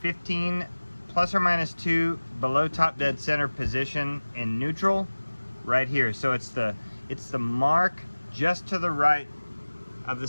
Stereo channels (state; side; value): inverted; both; correlation -1.00